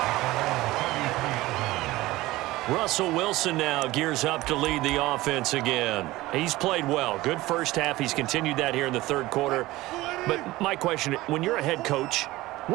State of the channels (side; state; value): left; quieter; 18.4 dB